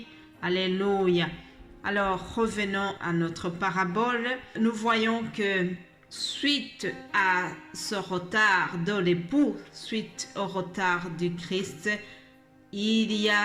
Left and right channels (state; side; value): identical; both; correlation 1.00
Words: Alléluia. Alors, revenons à notre parabole. Nous voyons que suite à ce retard de l'époux, suite au retard du Christ, il y